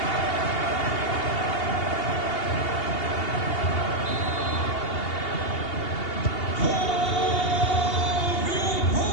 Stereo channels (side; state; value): right; late; 2.8 ms